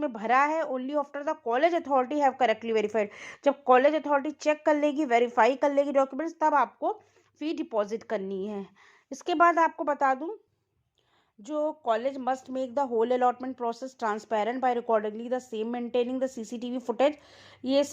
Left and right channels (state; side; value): identical; both; correlation 1.00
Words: भरा है only after the college authority have correctly verified. जब कॉलेज अथॉरिटी चेक कर लेगी, वेरीफाई कर लेगी डॉक्यूमेंट्स, तब आपको फी डिपॉजिट करनी है। इसके बाद आपको बता दूं, जो college must make the whole allotment process transparent by accordingly the same maintaining the CCTV footage. ये